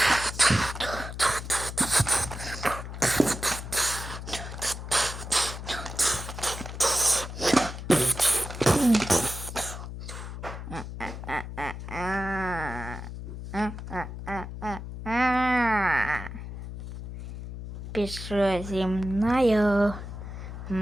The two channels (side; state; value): left; noise; hum, 9 dB below the sound